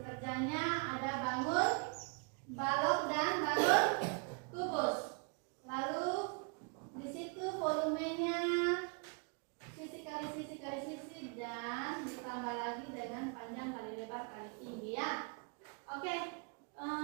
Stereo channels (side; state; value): left; quieter; 36.5 dB